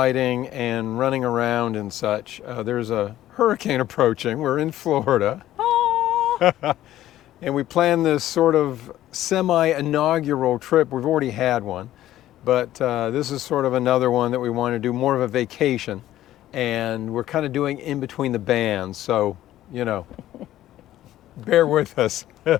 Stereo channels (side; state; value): right; quieter; 13.6 dB